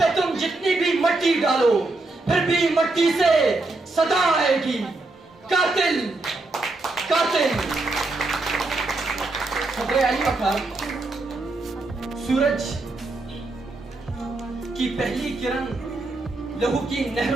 تم جتنی بھی مٹی ڈالو پھر بھی مٹی سے صدا آئے گی قاتل قاتل. صدر علی وقار سورج کی پہلی کرن لہو کی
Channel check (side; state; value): left; quieter; 3.1 dB